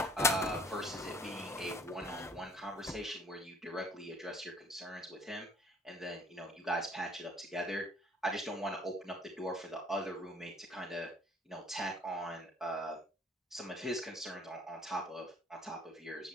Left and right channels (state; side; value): normal; both; correlation 0.54